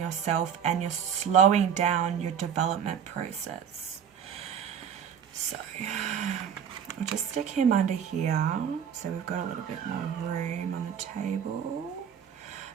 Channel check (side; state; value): left; quieter; 8.1 dB